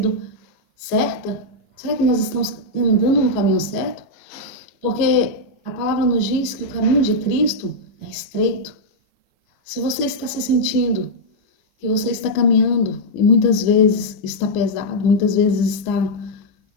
certas? Será que nós estamos andando no caminho certo? Porque a palavra nos diz que o caminho de Cristo é estreito. Se você está se sentindo que você está caminhando e muitas vezes está pesado, muitas vezes está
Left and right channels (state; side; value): late; right; 15 ms